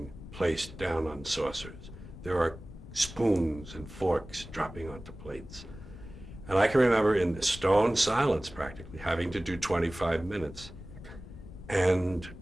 placed down on saucers. There are spoons and forks dropping onto plates. And I can remember in the stone silence practically having to do 25 minutes. And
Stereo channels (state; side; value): noise; left; rumble, 14 dB below the sound